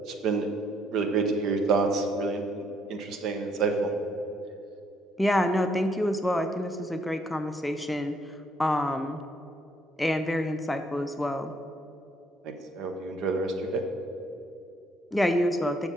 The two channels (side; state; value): both; normal; correlation 0.69